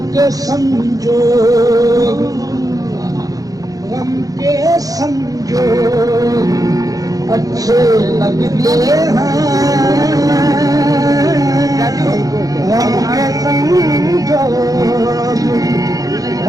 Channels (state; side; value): late; left; 0.17 ms